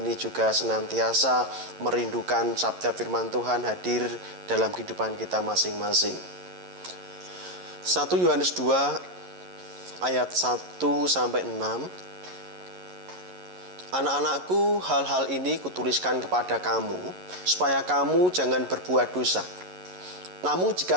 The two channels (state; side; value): late; left; 11 ms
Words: juga senantiasa merindukan sabda firman Tuhan hadir dalam kehidupan kita masing-masing. 1 Yohanes 2 ayat 1 sampai 6. Anak-anakku, hal-hal ini kutuliskan kepada kamu, supaya kamu jangan berbuat dosa. Namun